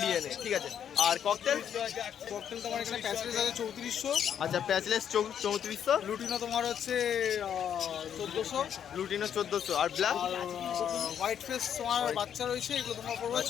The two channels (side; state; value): right; quieter; 8.9 dB